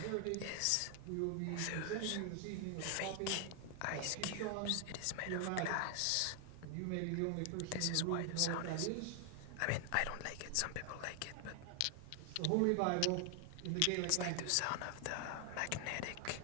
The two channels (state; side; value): different; both; correlation 0.00